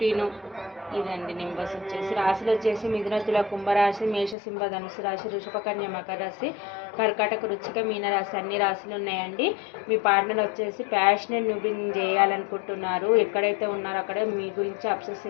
ఇదండి నెంబర్స్ వచ్చేసి. రాశులు వచ్చేసి మిథున, తుల, కుంభరాశి, మేష, సింహ, ధనుసు రాశి, వృషభ, కన్య, మకర రాశి, కర్కాటక, వృశ్చిక, మీన రాశి అన్ని రాశులు ఉన్నాయండి. మీ పార్ట్నర్ వచ్చేసి ప్యాషనెట్ న్యూ బిగినింగ్ చేయాలనుకుంటున్నారు. ఎక్కడైతే ఉన్నారో అక్కడ మీ గురించి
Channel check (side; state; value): right; drops out; at 4.4 s